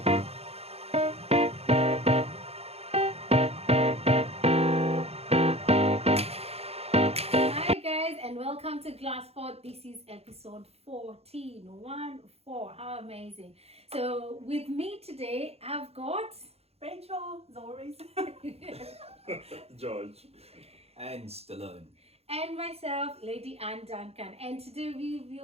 Hi guys, and welcome to GlasPod. This is episode 14. 1-4. How amazing. So with me today, I've got Rachel, as always. George. And Stallone. and myself, Lady Ann Duncan. And today we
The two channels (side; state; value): left; late; 0.29 ms